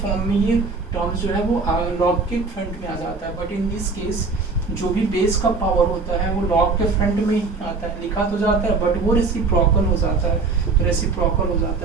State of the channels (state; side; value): quieter; left; 4.2 dB